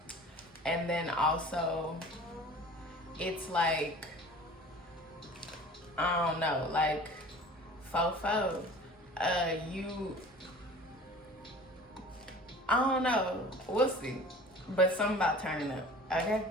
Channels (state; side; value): normal; both; correlation 0.43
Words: And then also, it's like, I don't know, like, fofo. I don't know, we'll see. But something about turning up, okay?